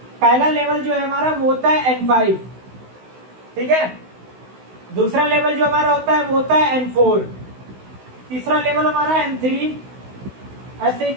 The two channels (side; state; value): left; late; 16 ms